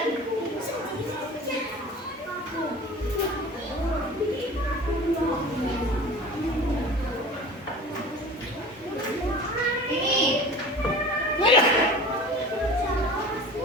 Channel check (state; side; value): normal; both; correlation 0.39